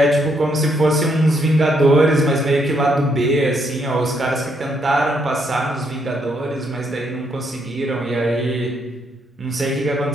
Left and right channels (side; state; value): both; normal; correlation 0.74